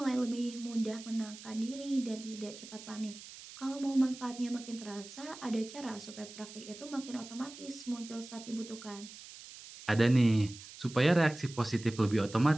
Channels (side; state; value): right; noise; hiss, 15 dB below the sound